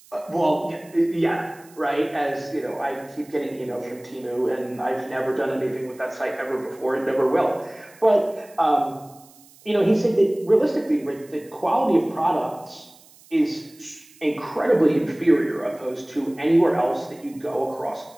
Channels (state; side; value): noise; right; hiss, 26 dB below the sound